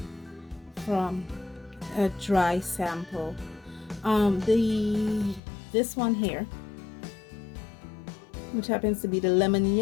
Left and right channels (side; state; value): right; drops out; at 5.4 s